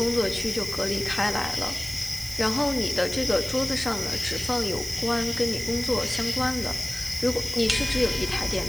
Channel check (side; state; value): right; noise; hiss, 12 dB below the sound